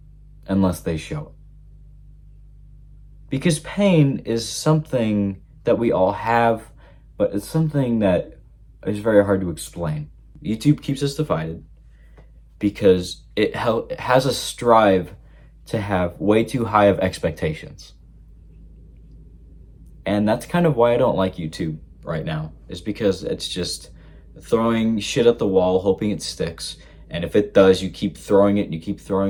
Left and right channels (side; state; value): both; identical; correlation 1.00